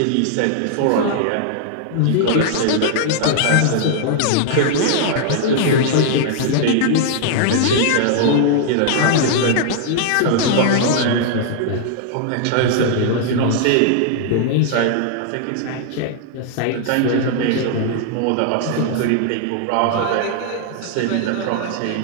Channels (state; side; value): different; both; correlation 0.00